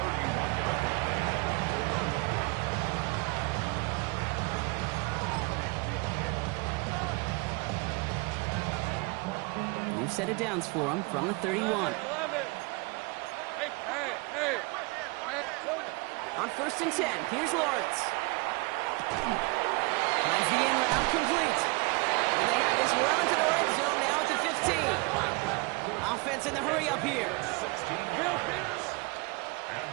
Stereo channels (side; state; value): left; quieter; 28.0 dB